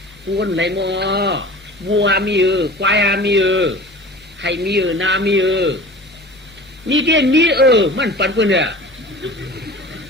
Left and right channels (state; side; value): normal; both; correlation 0.39